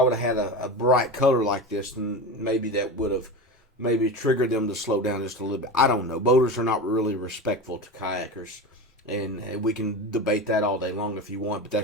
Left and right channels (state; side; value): normal; both; correlation 0.25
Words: would have had a bright color like this, then maybe that would have maybe triggered them to slow down just a little bit. I don't know. Boaters are not really respectful to kayakers, and we can debate that all day long if you want, but